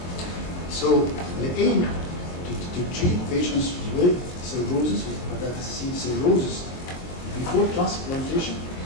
So the aim to treat patients with cirrhosis, with hepatitis C cirrhosis, before transplantation,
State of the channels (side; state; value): right; late; 22 ms